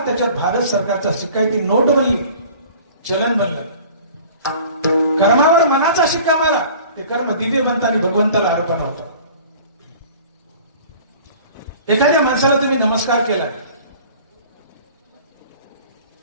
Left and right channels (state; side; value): inverted; both; correlation -0.46